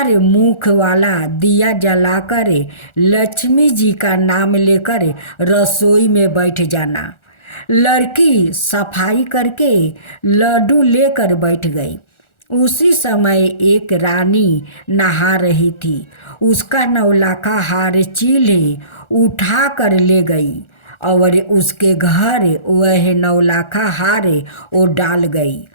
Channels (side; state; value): right; late; 1.4 ms